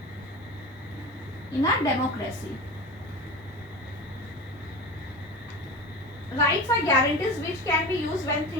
in a democracy. Rights are guarantees which can be used when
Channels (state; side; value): normal; both; correlation 0.29